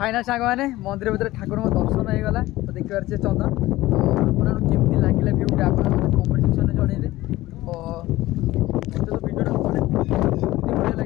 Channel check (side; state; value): right; quieter; 17.3 dB